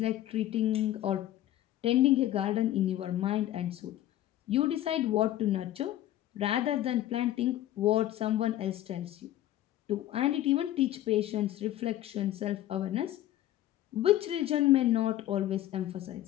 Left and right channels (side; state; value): right; quieter; 13.6 dB